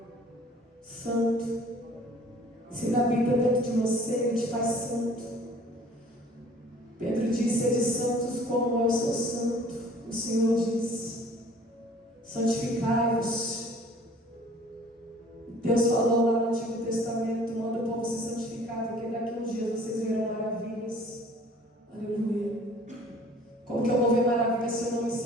Santo. Se Ele habita dentro de você, Ele te faz santo. Pedro disse: sede santos como eu sou santo. O Senhor disse: santificai-vos. Deus falou lá no Antigo Testamento: manda o povo se santificar, porque daqui a uns dias vocês verão maravilhas. Aleluia. Como que eu vou ver maravilhas se eu não me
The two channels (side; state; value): both; normal; correlation 0.52